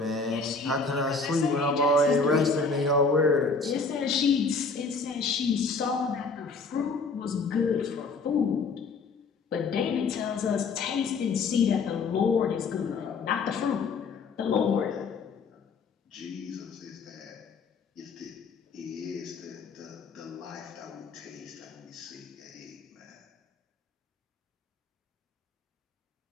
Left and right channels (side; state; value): right; quieter; 4.4 dB